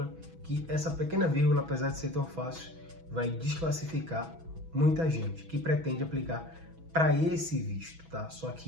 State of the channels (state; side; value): late; left; 6.1 ms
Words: que essa pequena vírgula, apesar de ser tão fácil, vai desclassificar muita gente que pretende aplicar para esse visto, tá? Só